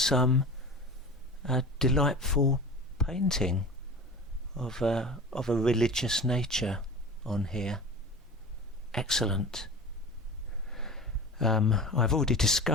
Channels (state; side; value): normal; both; correlation 0.34